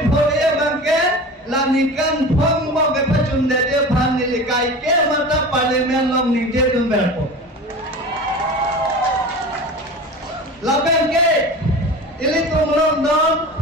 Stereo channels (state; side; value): normal; both; correlation 0.34